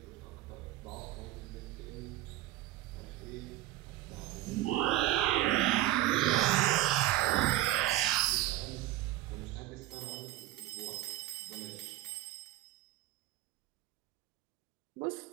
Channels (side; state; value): left; quieter; 15.4 dB